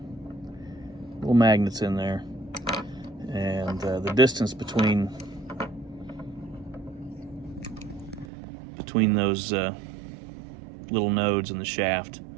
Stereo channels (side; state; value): left; drops out; at 8.2 s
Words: Little magnets in there, and the distance between those little nodes in the shaft